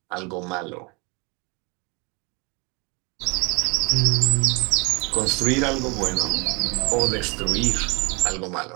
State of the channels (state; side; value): quieter; left; 29.5 dB